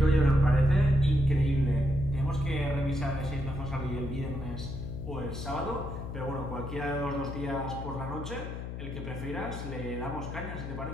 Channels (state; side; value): noise; left; hum, 7 dB below the sound